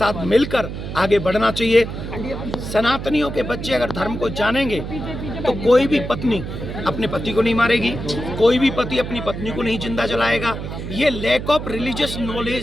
मिलकर आगे बढ़ना चाहिए। सनातनियों के बच्चे अगर धर्म को जानेंगे तो कोई भी पत्नी अपने पति को नहीं मारेगी, कोई भी पति अपनी पत्नी को नहीं जिंदा जलाएगा। ये लैक ऑफ रिलीजियस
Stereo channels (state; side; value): noise; right; hum, 7 dB below the sound